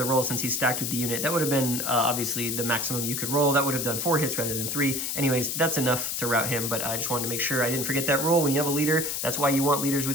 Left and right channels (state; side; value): noise; left; hiss, 2 dB below the sound